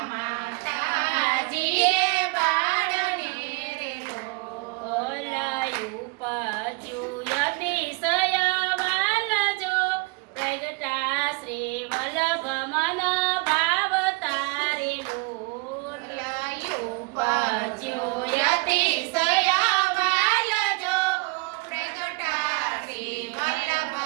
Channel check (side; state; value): left; quieter; 28.3 dB